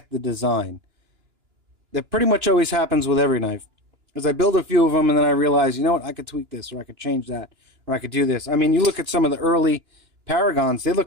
the design. That pretty much always happens with every knife. As I build a few of them and then I realize, you know what, I could tweak this, or I could change that, or I could do this. I mean, you look at some of the early Paragons, they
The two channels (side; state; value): left; late; 2.9 ms